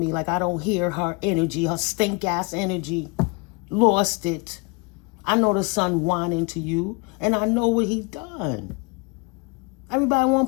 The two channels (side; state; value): right; quieter; 29.9 dB